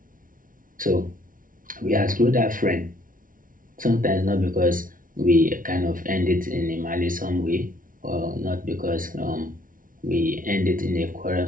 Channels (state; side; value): late; left; 0.39 ms